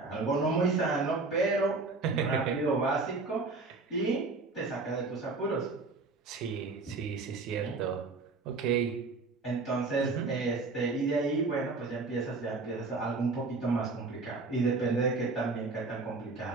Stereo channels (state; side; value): quieter; left; 3.8 dB